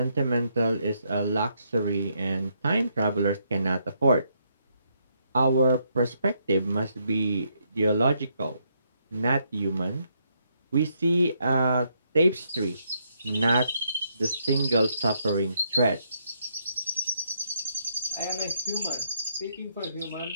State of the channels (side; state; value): both; inverted; correlation -0.75